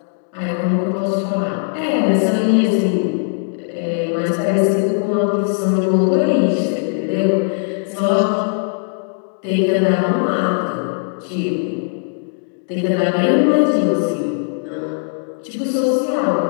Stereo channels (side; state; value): right; silent; digital silence